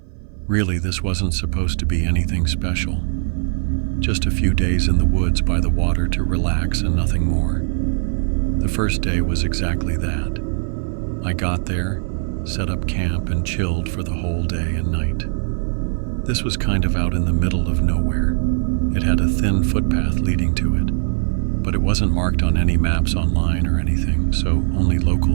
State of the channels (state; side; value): silent; left; 59 dB below the other